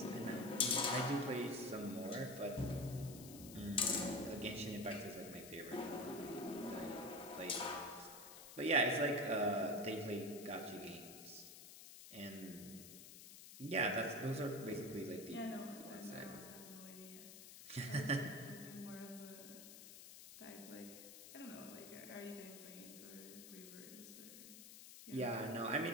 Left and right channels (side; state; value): left; noise; hiss, 13 dB below the sound